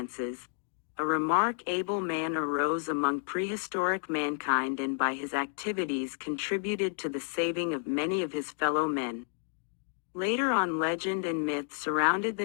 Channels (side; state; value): right; silent; digital silence